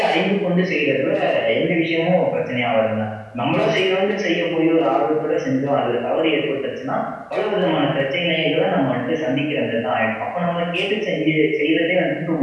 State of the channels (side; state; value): both; identical; correlation 1.00